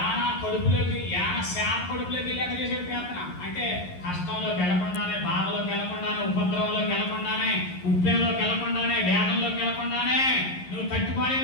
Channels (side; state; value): right; late; 11 ms